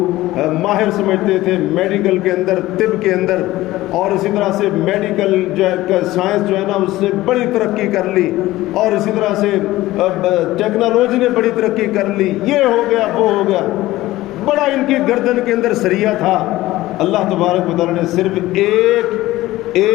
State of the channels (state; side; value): quieter; right; 17.0 dB